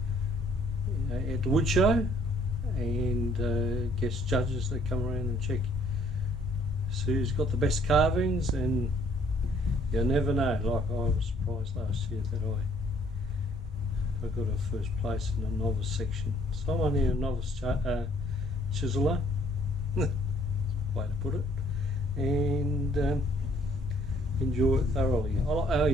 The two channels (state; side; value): normal; both; correlation 0.62